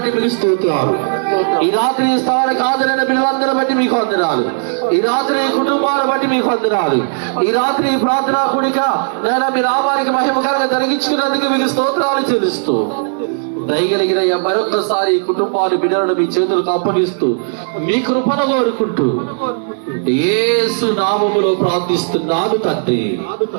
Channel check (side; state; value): left; silent; digital silence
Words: మీకు స్తోత్రాలు. ఈ రాత్రి ఈ స్థలానికి హాజరైన బిడ్డలందరిని బట్టి మీకు వందనాలు. ఈ రాత్రి ఈ కుటుంబాలను బట్టి మీకు వందనాలు. ఈ రాత్రి ఈ ప్రార్థనా కూడిక నేను మీ నామానికి మహిమకరంగా జరిగించుకున్నందుకు మీకు స్తోత్రాలు చెల్లిస్తూ దయగలిగిన మరొకసారి ఈ కుటుంబాన్ని, బిడ్డలను మీ చేతులకు అప్పగిస్తూ మీ కృపను కోరుకుంటూ యేసు నామములో ప్రార్థిస్తున్నాను తండ్రి,